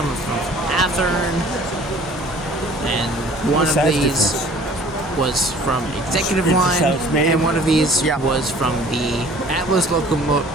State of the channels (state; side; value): normal; both; correlation 0.51